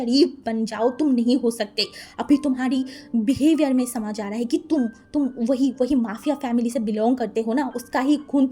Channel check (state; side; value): identical; both; correlation 1.00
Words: बन जाओ, तुम नहीं हो सकते। अभी तुम्हारी बिहेवियर में समझ आ रहा है कि तुम वही माफिया फैमिली से बिलोंग करते हो ना, उसका ही खून